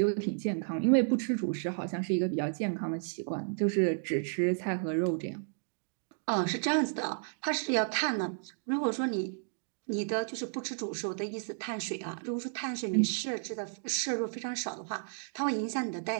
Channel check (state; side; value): silent; left; digital silence